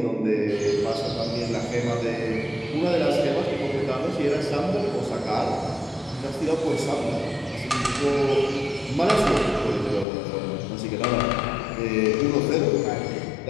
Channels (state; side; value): drops out; right; at 10.1 s